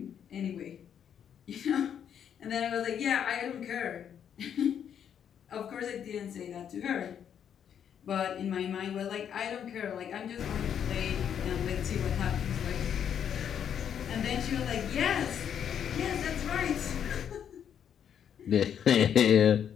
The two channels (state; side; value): quieter; right; 8.7 dB